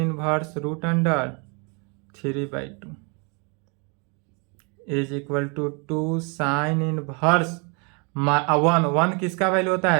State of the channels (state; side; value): quieter; left; 34.2 dB